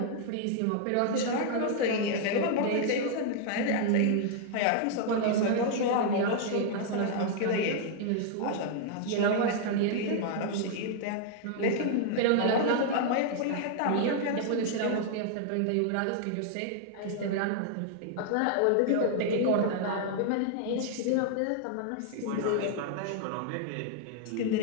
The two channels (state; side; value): different; both; correlation 0.00